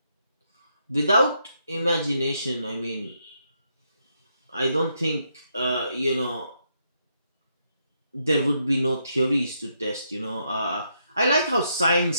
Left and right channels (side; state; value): both; inverted; correlation -0.78